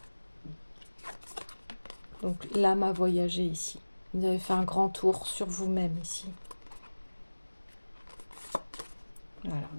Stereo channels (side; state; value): both; inverted; correlation -1.00